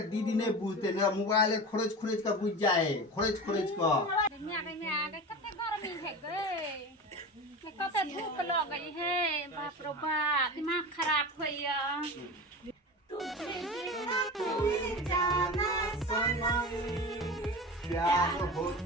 दीदी नहीं बुझते नहीं मोबाइल खोरज खोरज के बुझ जाए खोरज खोरज के में कते गर्मी है गे कते धूप लगे है बाप रो बाप दिमाग खराब होइया जाना सनम प्यार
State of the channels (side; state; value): both; normal; correlation 0.29